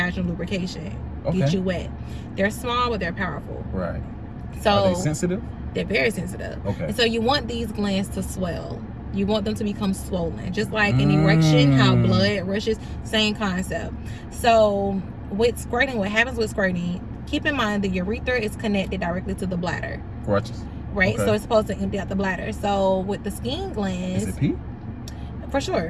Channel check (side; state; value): both; identical; correlation 1.00